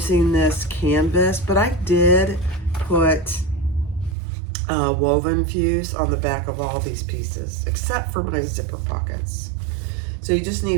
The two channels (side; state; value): left; drops out; at 4.2 s